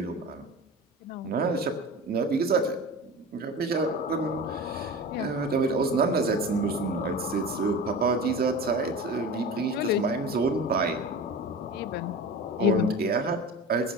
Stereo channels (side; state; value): both; normal; correlation 0.32